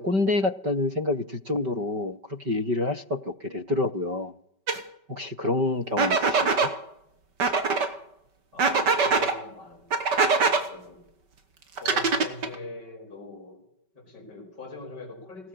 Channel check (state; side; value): late; left; 5.2 ms